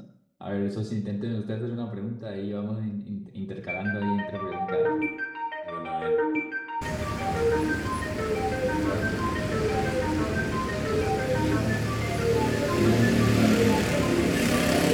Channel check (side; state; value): both; identical; correlation 1.00